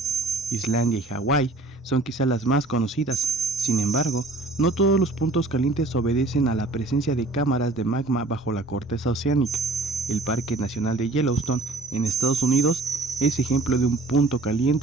Islandia y Hawái son quizá las más conocidas. Sin embargo, no todos los puntos calientes obedecen a la presencia de cámaras de magma bajo la corteza oceánica. El Parque Nacional de Yellowstone, en Estados Unidos, es ejemplo de un punto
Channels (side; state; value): left; quieter; 3.1 dB